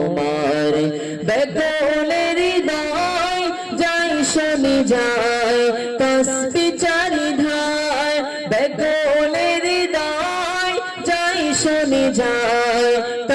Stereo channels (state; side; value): identical; both; correlation 1.00